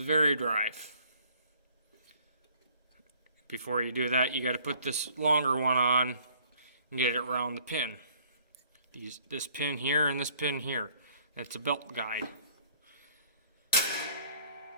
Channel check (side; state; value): both; inverted; correlation -0.58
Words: Vari-drive. Before you do that, you got to put this longer one on and get it around the pin. Use this pin here and this pin here. That's a belt guide.